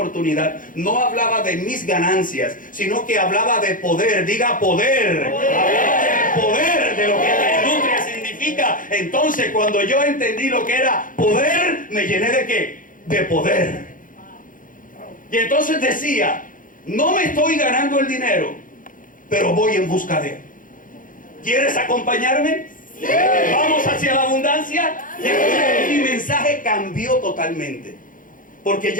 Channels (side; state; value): right; late; 0.39 ms